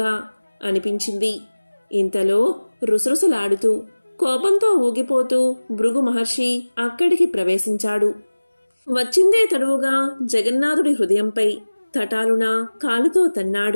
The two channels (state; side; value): inverted; both; correlation -1.00